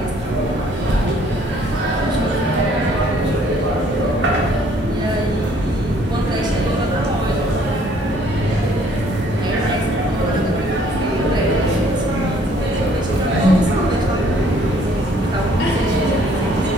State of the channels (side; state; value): both; normal; correlation 0.61